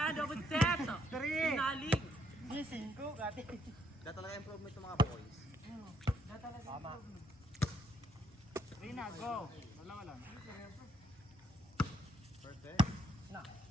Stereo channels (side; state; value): both; normal; correlation 0.72